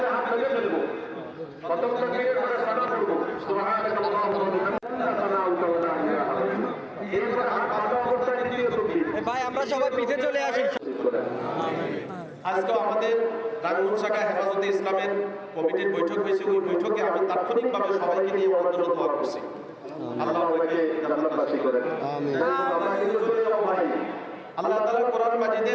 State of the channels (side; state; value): both; identical; correlation 1.00